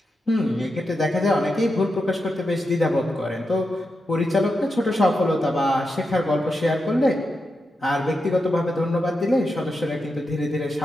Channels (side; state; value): both; normal; correlation 0.87